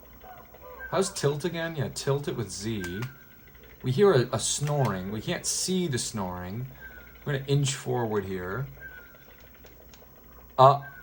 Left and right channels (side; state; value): both; identical; correlation 1.00